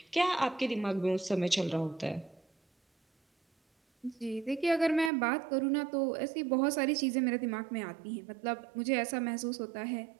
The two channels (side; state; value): left; drops out; at 5.1 s